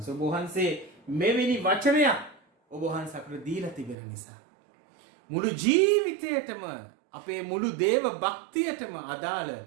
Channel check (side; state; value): left; drops out; at 4.0 s